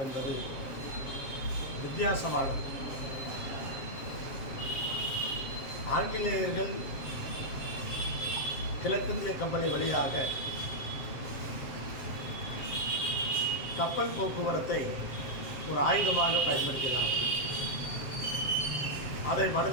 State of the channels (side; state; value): right; late; 7.5 ms